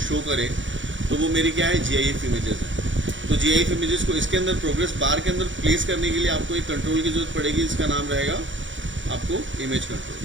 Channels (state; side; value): late; left; 0.55 ms